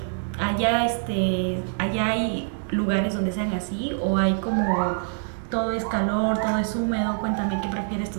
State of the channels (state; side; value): silent; left; digital silence